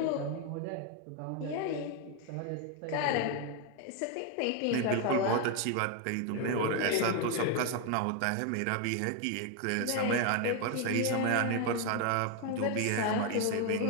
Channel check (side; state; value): both; different; correlation 0.01